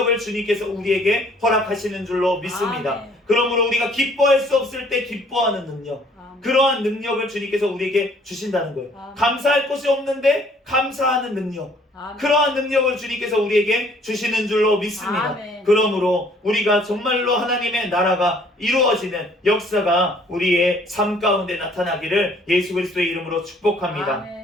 주님께서 우리에게 허락하시는 줄로 믿습니다. 아멘. 그러므로 우리가 기뻐할 수 없을 때 기뻐하는 능력, 아멘. 그러한 능력을 주님께서 우리에게 주신다는 거예요. 아멘. 감사할 것이 없는데 감사하는 능력, 아멘. 그러한 능력을 주님께서 우리에게 주시는 줄로 믿습니다. 아멘. 그러므로 우리가 정말로 하나님의 나라가 이루어지는 역사가 우리의 삶 가운데 나타나기를 예수 그리스도의 이름으로 축복합니다.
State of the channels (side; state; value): both; normal; correlation 0.59